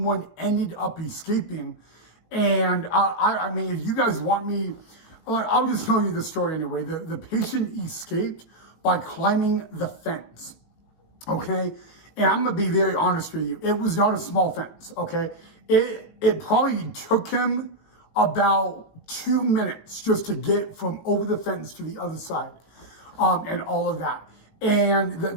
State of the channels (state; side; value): late; right; 19 ms